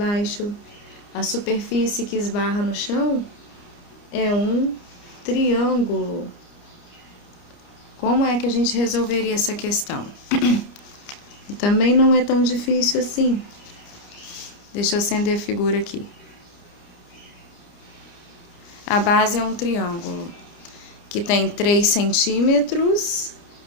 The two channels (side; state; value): right; late; 29 ms